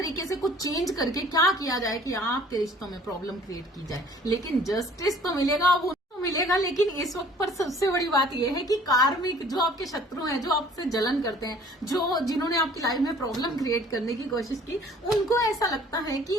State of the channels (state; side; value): normal; both; correlation 0.53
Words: से कुछ चेंज करके क्या किया जाए कि आपके रिश्तों में प्रॉब्लम क्रिएट की जाए। लेकिन जस्टिस तो मिलेगा, वो मिलेगा। लेकिन इस वक्त पर सबसे बड़ी बात यह है कि कार्मिक, जो आपके शत्रु हैं, जो आपसे जलन करते हैं, जिन्होंने आपकी लाइफ में प्रॉब्लम क्रिएट करने की कोशिश की, उनको ऐसा लगता है कि